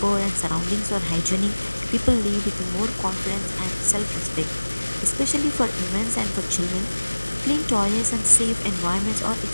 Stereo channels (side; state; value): both; inverted; correlation -1.00